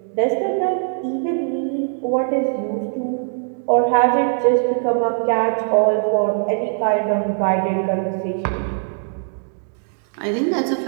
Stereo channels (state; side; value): silent; left; digital silence